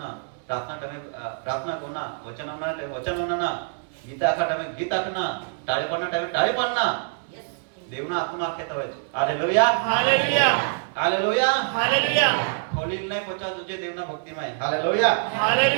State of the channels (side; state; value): left; silent; 62 dB below the other